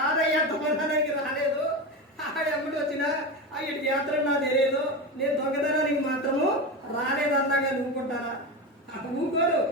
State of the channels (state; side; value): normal; both; correlation 0.20